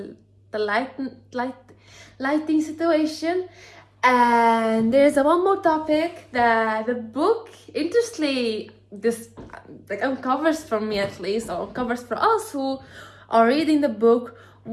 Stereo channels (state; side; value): identical; both; correlation 1.00